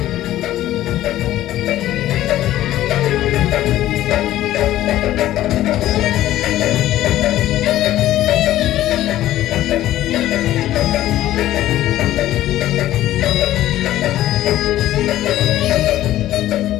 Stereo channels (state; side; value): quieter; right; 14.0 dB